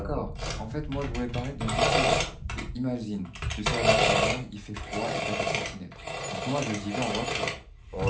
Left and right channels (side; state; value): both; identical; correlation 1.00